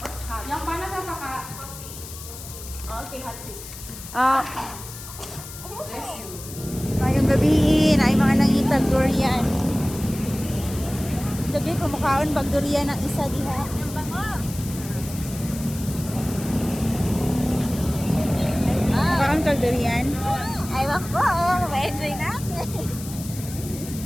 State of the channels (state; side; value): noise; left; hiss, 13 dB below the sound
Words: Hot. Yang panas apa kak? Okay, hot tea. Bless you. Ngayong gabiin ay mga nangitag durian. Gabi kumakaon bag durian ng isa diha. Yang bango. Kumakaon kag durian. Ay, wako. Ma-enjoy natin.